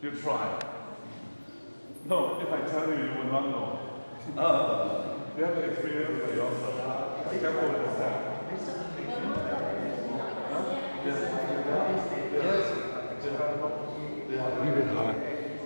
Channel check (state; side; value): inverted; both; correlation -1.00